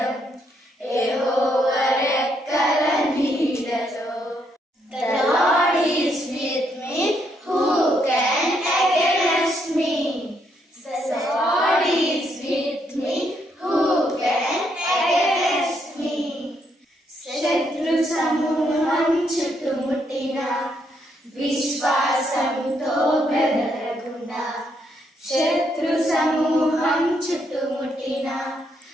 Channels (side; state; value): both; normal; correlation 0.75